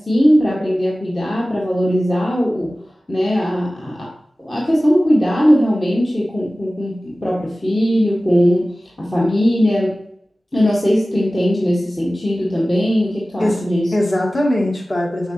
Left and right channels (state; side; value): normal; both; correlation 0.97